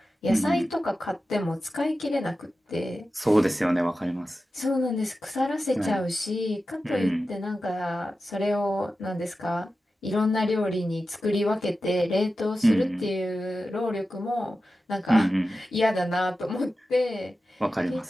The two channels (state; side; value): normal; both; correlation 0.93